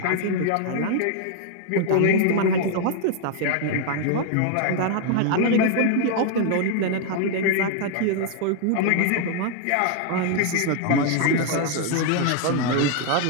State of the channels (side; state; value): both; different; correlation 0.00